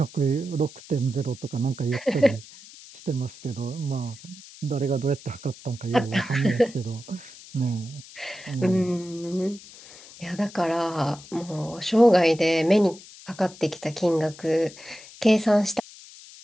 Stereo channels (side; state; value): left; noise; hiss, 19 dB below the sound